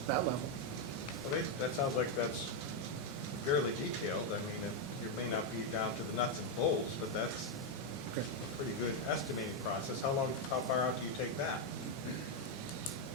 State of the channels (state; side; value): normal; both; correlation 0.02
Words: that level. Well, that sounds like that's fairly detailed. I mean, it may not be down to the nuts and bolts, but that's a pretty good estimating process. How far out do you take that?